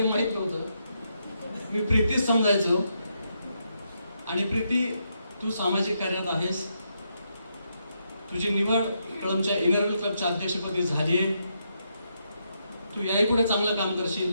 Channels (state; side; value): inverted; both; correlation -0.80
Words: माहीत नव्हतं, मी प्रीतीच समजायचो. आणि प्रीती, तू सामाजिक कार्यात आहेस, तुझी निवड कळंबच्या इनरव्हील क्लबच्या अध्यक्षपदी झाली आहे. तू याही पुढे चांगलं काम